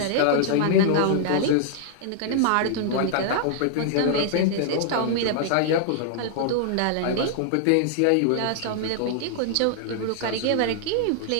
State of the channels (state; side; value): different; both; correlation -0.01